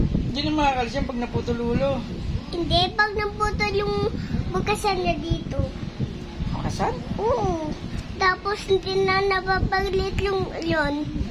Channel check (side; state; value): both; identical; correlation 1.00